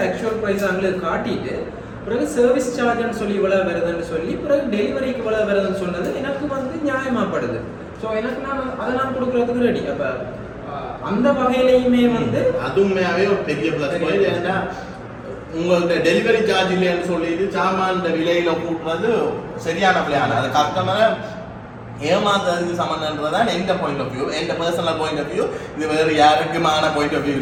ஆக்சுவல் ப்ரைஸ் அவங்களுக்கு காட்டிட்டு பிறகு சர்வீஸ் சார்ஜ்னு சொல்லி இவ்வளோ வருதுன்னு சொல்லி பிறகு டெலிவரிக்கு இவ்வளோ வருதுன்னு சொன்னது எனக்கு வந்து நியாயமாகப்படுது. ஸோ எனக்கு நான் கொடுக்குறதுக்கு ரெடி. அப்போ அந்த வகையிலையுமே வந்து அதுவுமே ஒரு பெரிய ப்ளஸ் பாயிண்ட். ஏன்னா உங்கள்கிட்ட டெலிவரி சார்ஜ் இல்லைன்னு சொல்லிட்டு சாமான் விலையில கூட்டுறது சரியான பிளான். அது கஸ்டமரை ஏமாத்துறதுக்கு சம்மந்தன்றதான் எந்த பாயிண்ட் ஆஃப் வியூ, எந்த பர்சனல் பாயிண்ட் ஆஃப் வியூ. இது வேறு யாருக்குமான பாயிண்ட் ஆஃப் வியூ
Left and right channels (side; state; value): both; identical; correlation 1.00